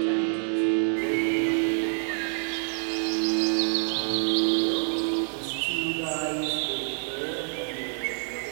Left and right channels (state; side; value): silent; left; 60 dB below the other